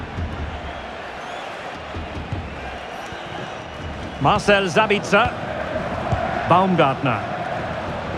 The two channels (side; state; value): both; identical; correlation 1.00